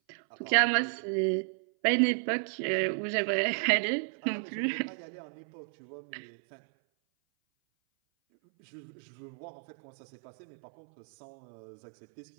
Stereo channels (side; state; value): left; silent; 56 dB below the other